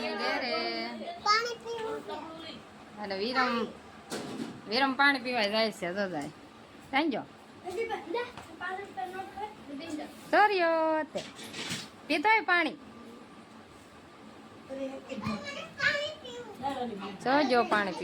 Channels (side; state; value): both; identical; correlation 1.00